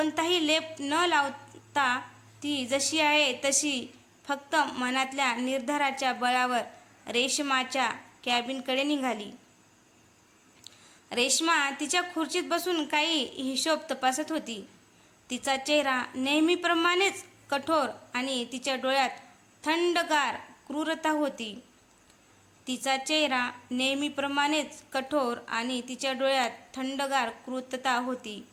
लेप न लावता ती जशी आहे तशी फक्त मनातल्या निर्धाराच्या बळावर रेश्माच्या कॅबिनकडे निघाली. रेश्मा तिच्या खुर्चीत बसून काही हिशोब तपासत होती. तिचा चेहरा नेहमीप्रमाणेच कठोर आणि तिच्या डोळ्यात थंडगार क्रूरता होती.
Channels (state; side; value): identical; both; correlation 1.00